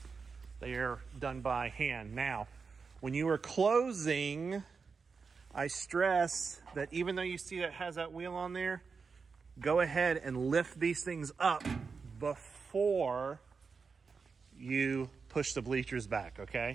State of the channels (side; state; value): left; quieter; 5.1 dB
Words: They are done by hand. Now, when you are closing, I stress that even though you see that it has that wheel on there, go ahead and lift these things up before you push the bleachers back,